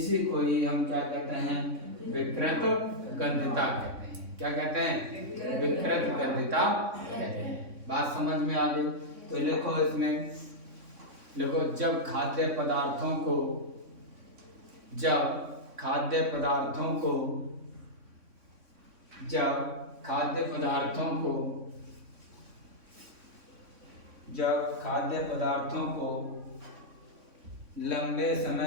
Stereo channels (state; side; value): late; left; 3.6 ms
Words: को ही हम क्या कहते हैं, विकृत गंधता कहते हैं। क्या कहते हैं, विकृत गंधता कहते हैं। बात समझ में आ गई, तो लिखो इसमें, लिखो जब खाद्य पदार्थों को जब खाद्य पदार्थों को लंबे